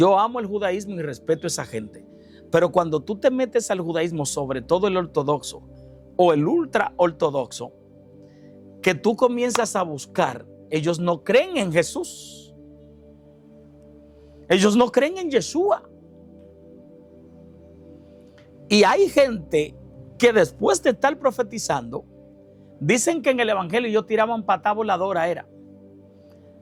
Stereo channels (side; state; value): both; identical; correlation 1.00